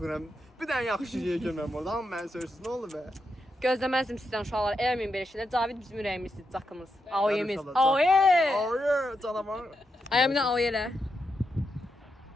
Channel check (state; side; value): normal; both; correlation 0.85